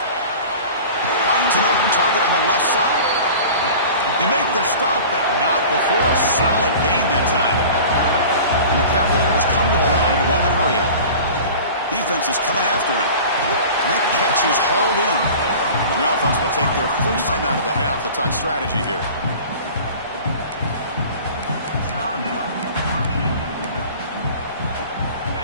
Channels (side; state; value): both; inverted; correlation -0.40